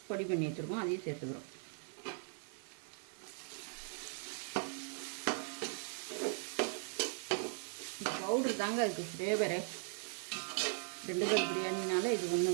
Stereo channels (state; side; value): silent; left; 52 dB below the other